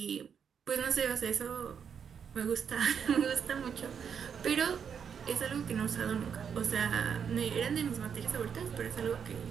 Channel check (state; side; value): quieter; left; 7.3 dB